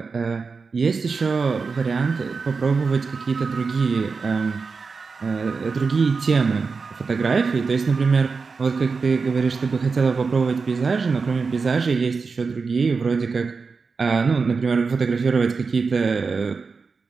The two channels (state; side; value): quieter; left; 4.8 dB